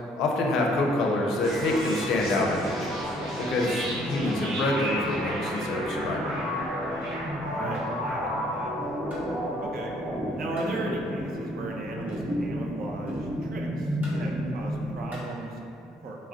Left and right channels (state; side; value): normal; both; correlation 0.63